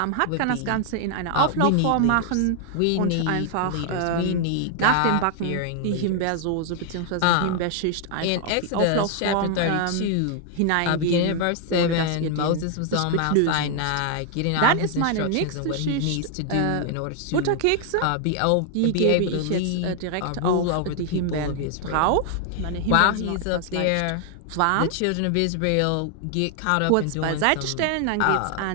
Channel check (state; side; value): different; both; correlation 0.00